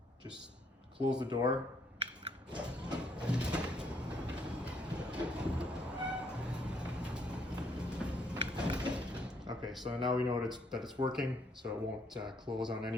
Just close the door. Okay, so now we know that it's working, so it won't close on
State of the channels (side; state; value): both; normal; correlation 0.69